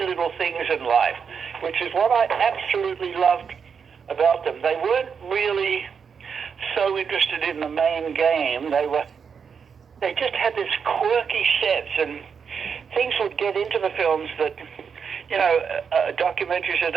little things in life, which is what I absolutely loved about them. They weren't really so interested in the main game. They just had this quirky sense, and things would get into the films that, documentaries that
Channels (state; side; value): quieter; left; 6.5 dB